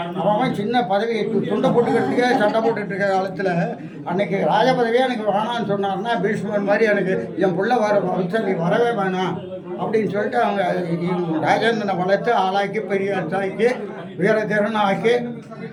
அவன் சின்ன பதவி துண்டை போட்டுக்கிறதுக்கே சண்டை போட்டுட்டு இருக்க காலத்தில் அன்றைக்கி ராஜ பதவியே எனக்கு வேணான்னு சொன்னார்னா பீஷ்மர் மாதிரி எனக்கு என் பிள்ளை வரவே வேணாம் அப்படின்னு சொல்லிட்டு அவங்க ராஜேந்திரனை வளர்த்து ஆளாக்கி பெரிய ஆக்கி வீர திறனாக்கி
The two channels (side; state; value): both; identical; correlation 1.00